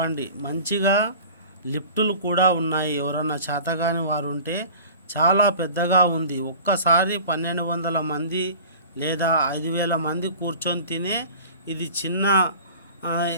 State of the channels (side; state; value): both; inverted; correlation -0.41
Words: మంచిగా లిఫ్టులు కూడా ఉన్నాయి. ఎవరన్నా చేతగాని వారు ఉంటే చాలా పెద్దగా ఉంది. ఒక్కసారి 1200 మంది లేదా 5000 మంది కూర్చొని తినే ఇది చిన్న